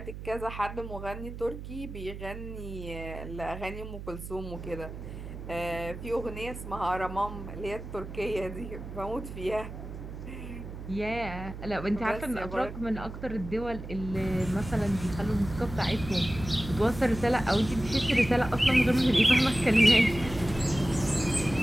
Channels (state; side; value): noise; right; hum, 10 dB below the sound